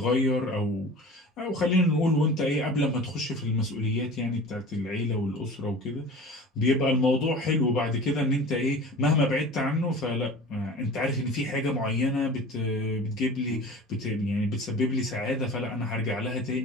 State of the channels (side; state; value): both; normal; correlation 0.39